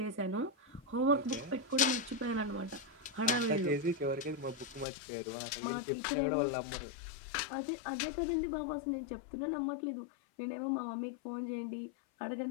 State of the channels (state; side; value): drops out; right; at 4.9 s